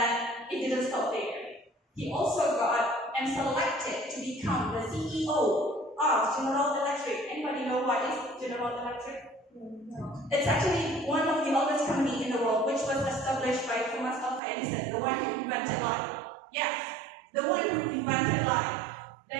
it didn't stop there. He also got and selected to become the CEO of General Electric. Anybody know what is General Electric? No. It's actually one of the oldest companies in the world, which was established by Thomas Alva invented life. Yes, the one who invented life.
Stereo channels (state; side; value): drops out; left; at 14.4 s